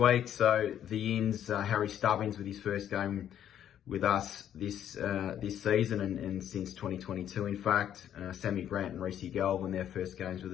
so the ins, Harry Stubbins with his first game with us this season and since 2022, in fact. Sammy Grant and Reece Galvin, their first games with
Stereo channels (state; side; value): quieter; right; 10.2 dB